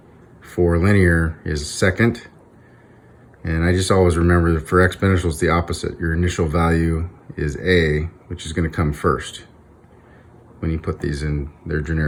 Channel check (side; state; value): both; identical; correlation 1.00